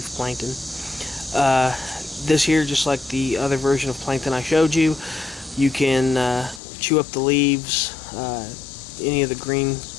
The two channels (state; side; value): drops out; right; at 6.6 s